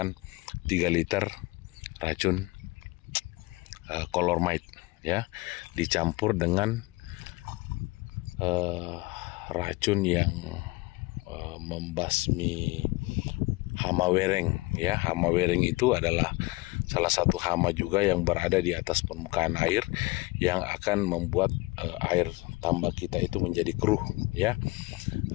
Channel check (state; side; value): quieter; right; 22.9 dB